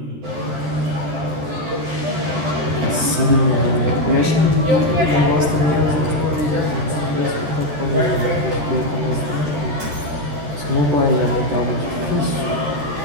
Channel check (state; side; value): late; left; 13 ms